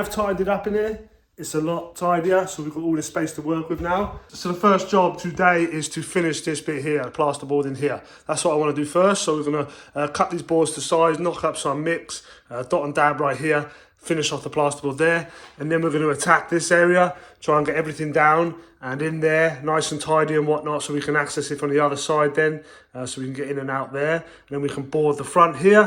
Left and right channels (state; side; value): identical; both; correlation 1.00